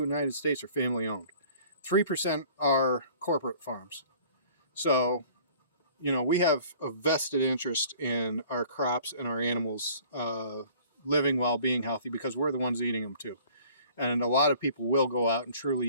States are family owned. 3% are corporate farms. So, we have a vested interest in our crops and our animals living while being healthy because we're the ones eating them too. And a lot of people will go out and truly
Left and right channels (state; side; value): inverted; both; correlation -0.51